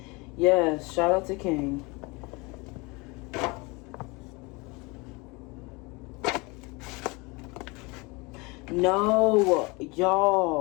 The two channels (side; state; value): right; quieter; 26.7 dB